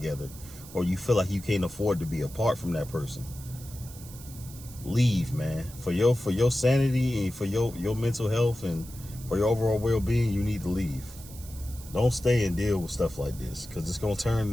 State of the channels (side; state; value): right; noise; hiss, 17 dB below the sound